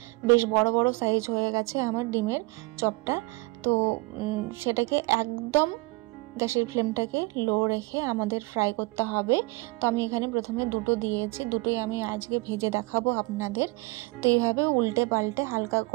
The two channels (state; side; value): quieter; left; 24.9 dB